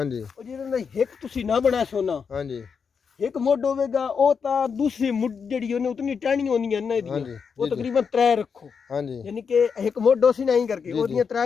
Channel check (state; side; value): quieter; right; 6.1 dB